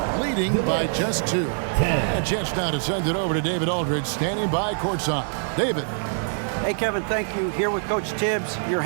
leading by just 2. And a chance now to send it over to David Aldridge standing by courtside. David. Hey, Kevin, thank you. Here with Coach Tibbs. You're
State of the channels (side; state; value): left; silent; digital silence